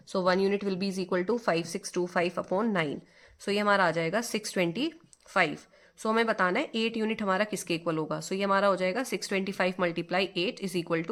1 unit will be is equal to 5625 upon 9। ये हमारा आ जाएगा 625। हमें बताना है 8 यूनिट हमारा किसके इक्वल होगा। ये हमारा हो जाएगा 625 multiply 8 is equal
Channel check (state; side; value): identical; both; correlation 1.00